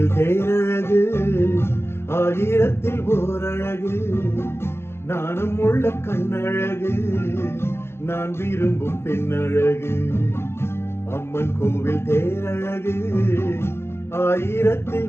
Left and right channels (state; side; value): late; right; 0.12 ms